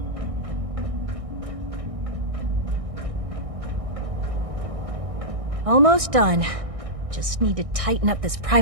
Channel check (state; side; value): late; left; 1.6 ms